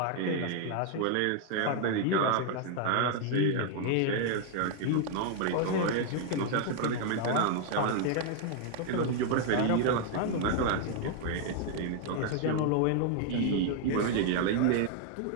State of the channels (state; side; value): different; both; correlation 0.00